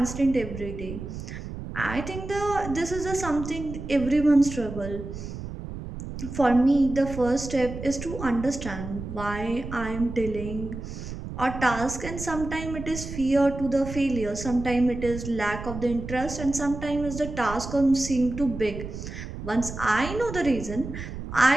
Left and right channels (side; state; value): right; noise; rumble, 9 dB below the sound